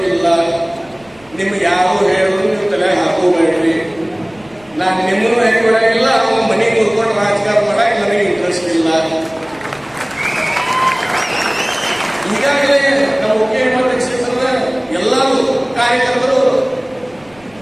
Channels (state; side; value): noise; right; rumble, 28 dB below the sound